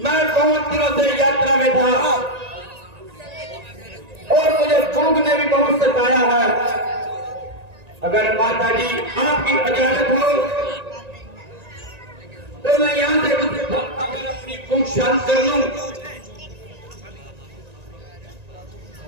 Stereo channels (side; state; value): left; late; 1.9 ms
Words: मैं बहुत दिनों से यात्रा में था और मुझे भूख ने भी बहुत सताया है। अगर माता जी आपकी इजाजत हो तो मैं यहाँ से कुछ अगर अपनी भूख शांत कर लूं।